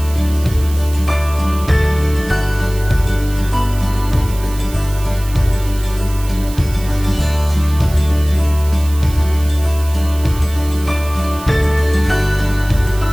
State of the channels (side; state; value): right; noise; hiss, 16 dB below the sound